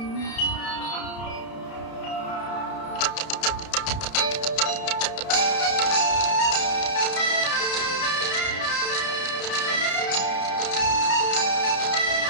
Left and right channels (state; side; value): late; right; 31 ms